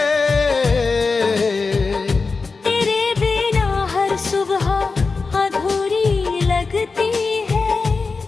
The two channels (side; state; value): right; quieter; 4.3 dB